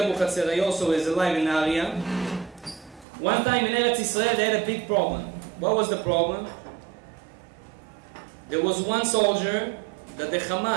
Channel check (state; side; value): drops out; left; at 3.1 s